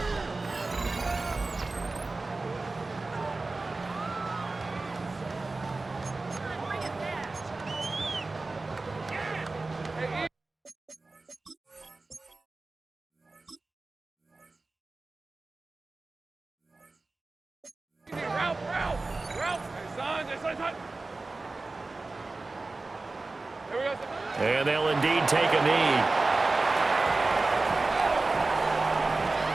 And they'll indeed take a knee.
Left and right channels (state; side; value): quieter; left; 3.4 dB